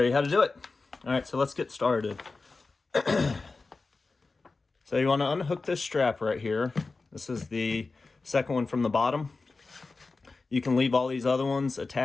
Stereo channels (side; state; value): right; quieter; 3.9 dB